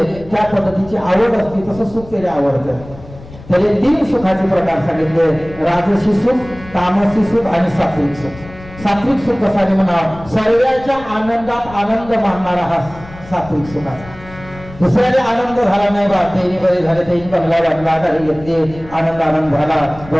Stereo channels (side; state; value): left; noise; rumble, 18 dB below the sound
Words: त्या पद्धतीची आवड असते तसं सुख त्याला आवडतं. त्याने 3 सुखाचे प्रकार सांगितले. राजसी सुख, तामसी सुख आणि सात्विक सुख. सात्विक सुख कसा म्हणा सर्वांच्या आनंदात आनंद मानणारा हा सात्विक सुखाचा. दुसऱ्याने आनंद झाला नाही बा त्यांनी बरे झाले त्यांनी बंगला बांधला गाडी घेतली आनंद झाला